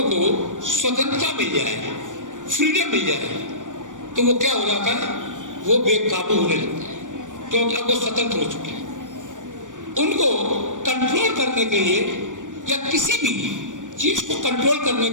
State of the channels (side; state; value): left; late; 0.87 ms